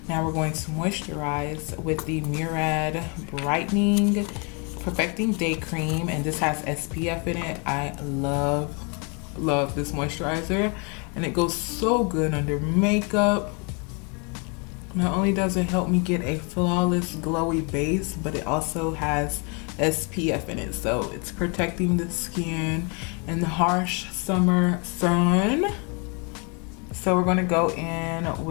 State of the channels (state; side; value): quieter; right; 34.2 dB